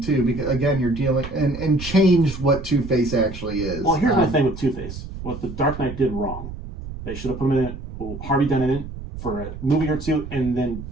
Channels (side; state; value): right; noise; rumble, 10 dB below the sound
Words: too, because again, you're dealing and change what Two-Face actually is. Well, here's my thing with Two-Face. What the Dark Knight did wrong. They should have put him in it, Harvey Dent in it for a movie or two, and then